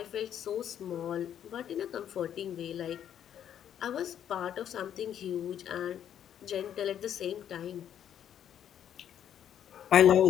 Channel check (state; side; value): quieter; right; 9.8 dB